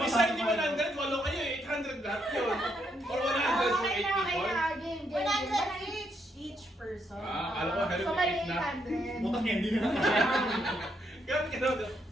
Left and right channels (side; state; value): both; normal; correlation 0.76